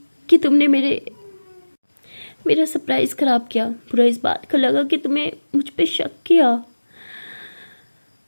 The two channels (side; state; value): both; inverted; correlation -1.00